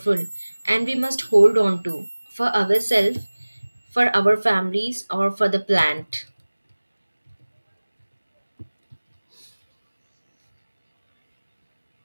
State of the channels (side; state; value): both; inverted; correlation -1.00